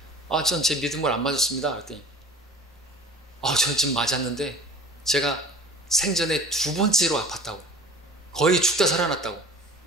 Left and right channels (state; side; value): normal; both; correlation 0.42